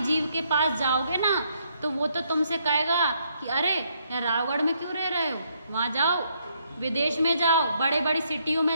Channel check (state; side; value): inverted; both; correlation -0.72